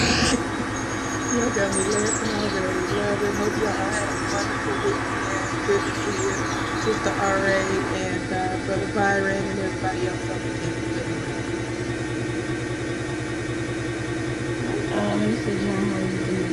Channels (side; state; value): both; identical; correlation 1.00